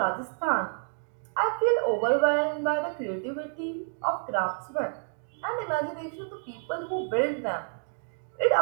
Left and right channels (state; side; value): silent; left; 57 dB below the other